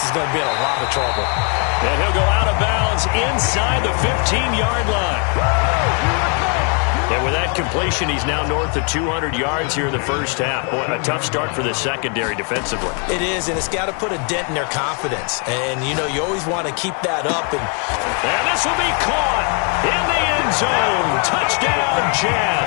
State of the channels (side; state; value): right; quieter; 38.9 dB